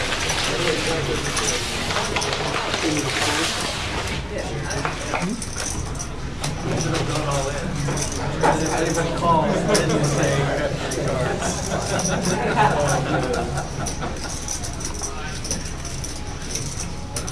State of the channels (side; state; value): both; identical; correlation 1.00